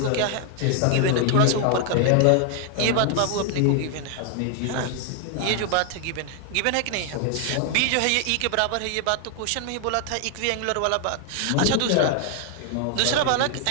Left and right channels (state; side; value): different; both; correlation 0.00